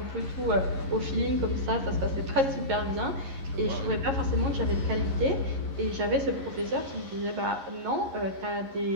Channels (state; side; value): late; left; 11 ms